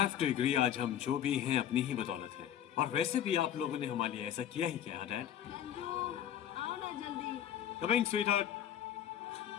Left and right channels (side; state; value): right; quieter; 10.3 dB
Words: to agree, आज हम जो भी हैं अपनी ही बदौलत हैं। और वैसे भी आप लोगों ने हमारे लिए ऐसा किया ही क्या, Dad? आओ ना जल्दी। Coming, sweetheart.